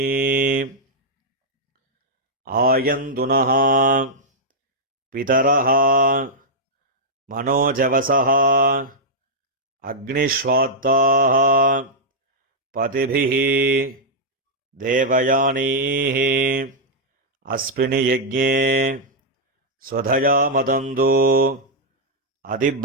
ஆயந்துனः பிதரः மனோஜவசः அக்னிஷ்வாத்தாः பதிபிः தேவயானீः அஸ்மின் யஜ்ஞே ஸ்வதயா மதந்து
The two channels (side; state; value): both; normal; correlation -0.06